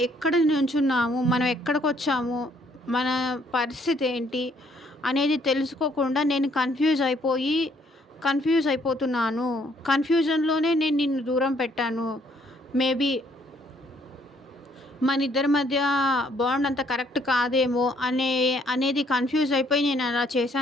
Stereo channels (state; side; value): normal; both; correlation 0.66